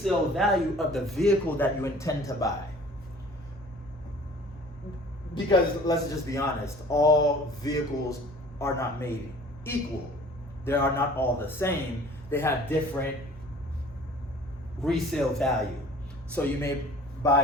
value of the vehicle that you intend to buy. Because let's just be honest, all vehicles are not made equal. They are not all the same. They have different resale value. So you may buy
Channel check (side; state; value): both; normal; correlation 0.49